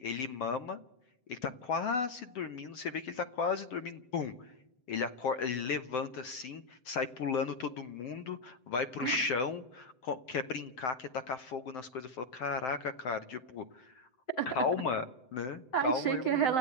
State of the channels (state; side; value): late; right; 7.8 ms